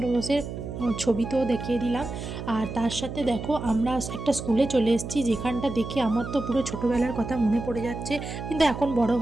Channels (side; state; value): right; noise; hum, 7 dB below the sound